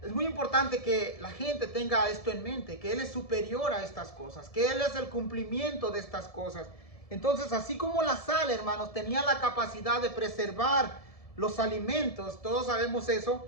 es muy importante que la gente tenga esto en mente, que Él es superior a estas cosas, que Él es el cumplimiento de estas cosas. Entonces, así como la sal, hermanos, tenía la capacidad de preservar los alimentos, todos sabemos eso,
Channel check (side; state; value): right; late; 1.7 ms